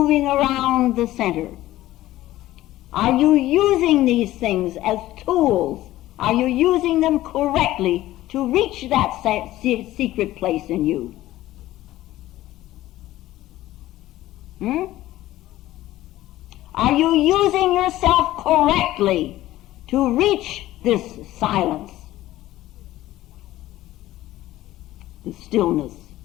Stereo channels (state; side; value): quieter; right; 15.4 dB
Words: around the center. Are you using these things as tools? Are you using them correctly to reach that secret place in you? Are you using yourself correctly to reach this silence, the stillness